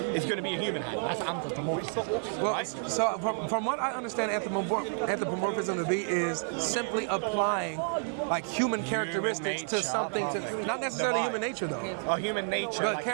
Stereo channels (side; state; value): left; silent; 58 dB below the other